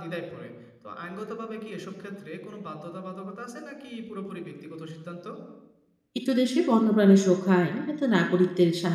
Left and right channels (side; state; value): both; identical; correlation 1.00